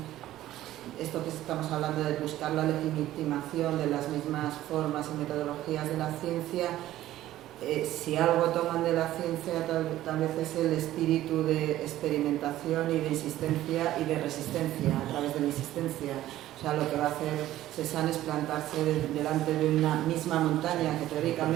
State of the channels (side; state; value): left; quieter; 14.2 dB